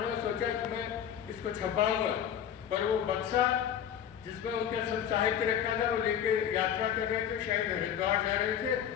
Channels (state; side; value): quieter; right; 9.4 dB